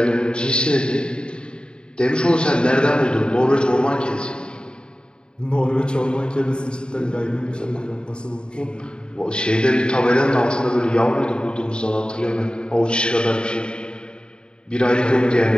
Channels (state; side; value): late; right; 0.050 ms